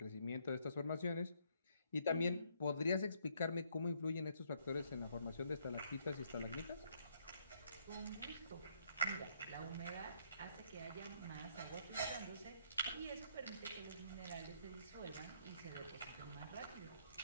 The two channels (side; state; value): both; inverted; correlation -0.69